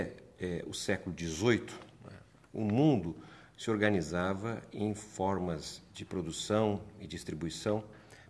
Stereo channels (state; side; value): identical; both; correlation 1.00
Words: o século XVIII, o mundo se organizava em formas de produção e distribuição